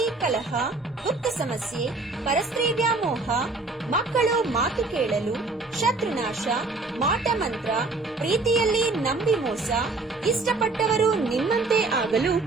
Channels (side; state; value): left; quieter; 3.5 dB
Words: ಕಲಹ, ಗುಪ್ತ ಸಮಸ್ಯೆ, ಪರಸ್ತ್ರೀ ವ್ಯಾಮೋಹ, ಮಕ್ಕಳು ಮಾತು ಕೇಳಲು, ಶತ್ರುನಾಶ, ಮಾಟ ಮಂತ್ರ, ಪ್ರೀತಿಯಲ್ಲಿ ನಂಬಿ ಮೋಸ, ಇಷ್ಟಪಟ್ಟವರು ನಿಮ್ಮಂತೆ ಆಗಲು